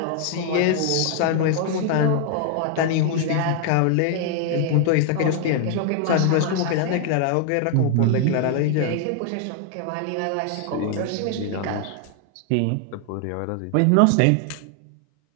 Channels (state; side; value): different; both; correlation 0.00